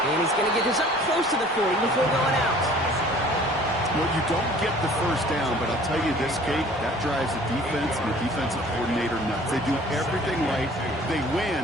And he's going to get this up close to the 40 before going out. Well, you don't get the 1st down, but I'll tell you this, Kate, that drives the defense and the defensive coordinator nuts. They do everything right. They win,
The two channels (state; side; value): normal; both; correlation 0.50